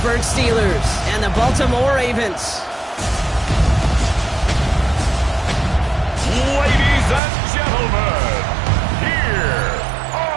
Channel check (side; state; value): left; drops out; at 7.2 s